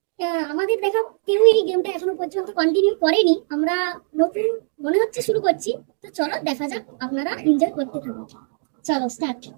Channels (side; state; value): left; silent; 60 dB below the other